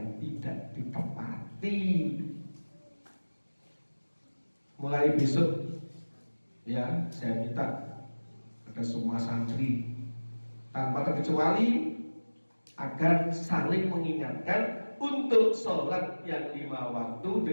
tidak ditepati. Mulai besok ya, saya minta pada semua santri tanpa terkecuali agar saling mengingatkan untuk sholat yang 5 waktu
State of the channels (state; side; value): inverted; both; correlation -1.00